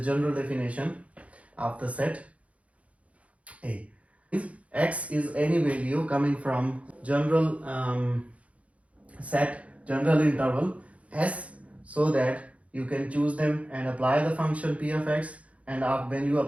general definition of the set A. X is any value coming from general set, general interval S, so that you can choose them and apply the function P of X, and when you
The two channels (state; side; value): late; left; 0.065 ms